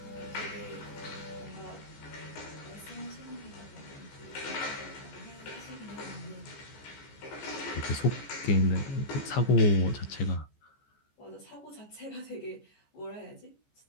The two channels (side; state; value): right; late; 14 ms